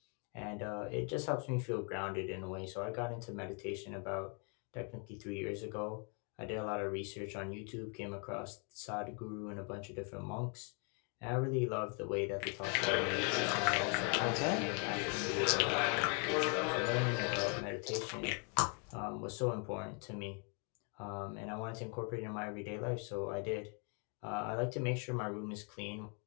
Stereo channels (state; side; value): quieter; right; 37.6 dB